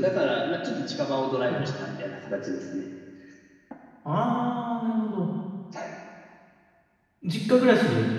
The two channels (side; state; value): both; identical; correlation 1.00